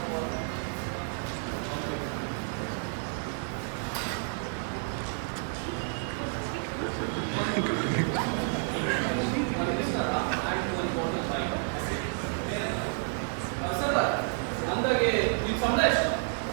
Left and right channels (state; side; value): silent; left; 58 dB below the other